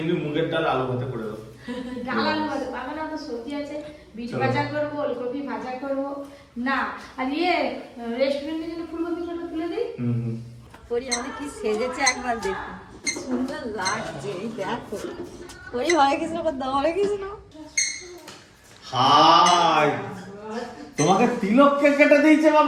মুগের ডাল আলু ভাতে করে দাও। ডাল আলু ভাতে পাবে না, তো সবজি আছে, বিট ভাজা করবো, ওলকপি ভাজা করবো না। আর রেস্টুরেন্টের জন্য ফুলকপিটা তুলে দিই। পরি আমাদের কি সেজেছে একবার দেখো, সুন্দর লাগছে। এই দেখো পরি, হরে কৃষ্ণ করতে, হরে কৃষ্ণ। হাই, তোমাকে তিলক কেটে দিয়েছে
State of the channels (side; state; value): both; identical; correlation 1.00